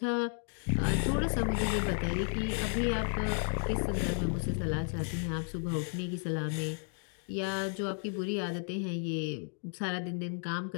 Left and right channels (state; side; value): silent; right; 56 dB below the other